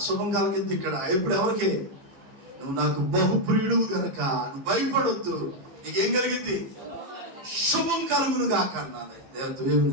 శుభం కలిగింది ఇక్కడ. ఇప్పుడు ఎవరికి? నువ్వు నాకు బహుప్రియుడు గనక నువ్వు భయపడొద్దు, నీకేం కలిగింది? శుభం కలుగునుగాక అన్నది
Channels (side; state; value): left; late; 15 ms